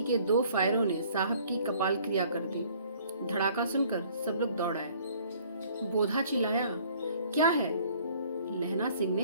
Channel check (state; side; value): inverted; both; correlation -0.57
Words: के 2 फायरों ने साहब की कपाल क्रिया कर दी। धड़ाका सुनकर सब लोग दौड़ आए। बोधा चिल्लाया, क्या है? लहना सिंह